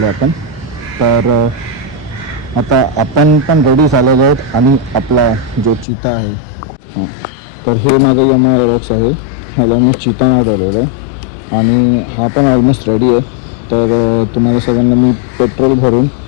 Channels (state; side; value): drops out; right; at 5.9 s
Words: आपण. तर आता आपण पण रेडी झालेलो आहोत आणि आपला जो चिता आहे, हां, तर हे माझं यमाहा एरोक्स आहे, ह्याला मी चिता नाव दिलेलं आहे आणि हा पण ऑलमोस्ट रेडी आहे. तर तुम्हाला सगळ्यांना मी पेट्रोल भरून